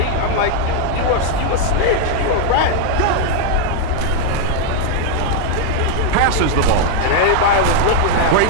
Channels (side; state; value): both; different; correlation 0.00